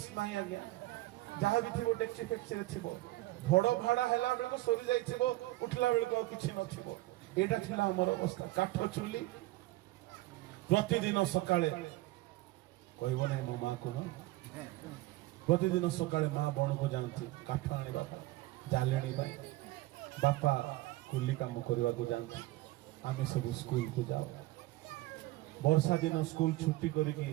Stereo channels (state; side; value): quieter; left; 18.4 dB